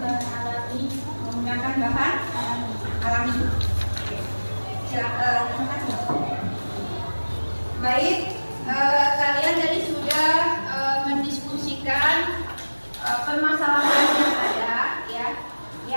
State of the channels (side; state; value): both; inverted; correlation -1.00